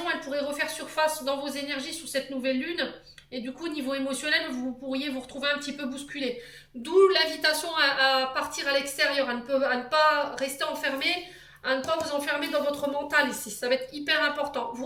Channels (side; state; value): both; identical; correlation 1.00